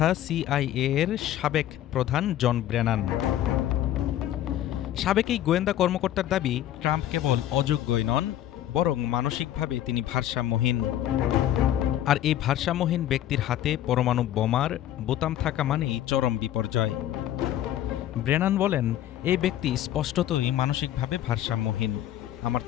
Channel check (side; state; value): right; quieter; 12.3 dB